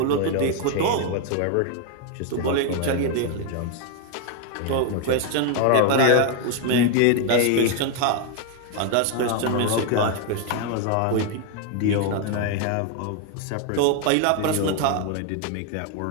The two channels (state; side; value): different; both; correlation 0.01